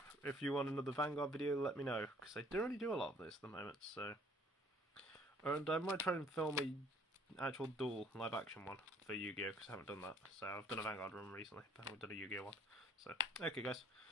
If you want another Vanguard video, let me know, because I don't really do a lot of this at the moment, so... And I might try and film a actual dual live action one for Yu-Gi-Oh, because I haven't done that. So I've done a Vanguard run recently, but I haven't done a Yu-Gi-Oh one. So, okay guys,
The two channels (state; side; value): normal; both; correlation 0.58